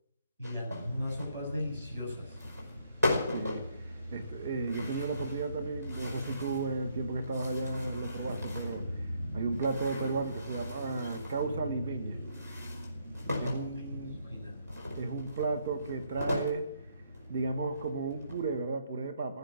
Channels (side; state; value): both; inverted; correlation -0.72